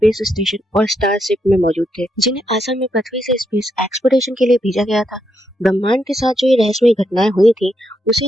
स्टेशन और स्टारशिप में मौजूद थे, जिन्हें असल में पृथ्वी से स्पेस एक्सप्लोरेशन के लिए भेजा गया था। ब्रह्मांड के साथ जो ये रहस्यमय घटनाएं हुई थी,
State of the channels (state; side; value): normal; both; correlation 0.81